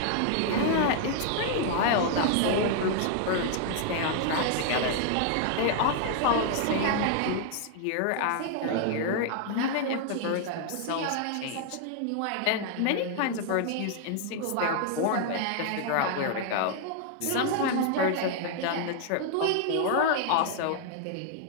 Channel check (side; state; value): both; different; correlation 0.00